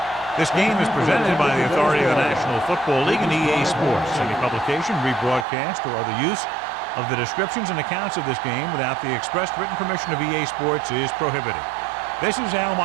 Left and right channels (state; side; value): drops out; left; at 5.5 s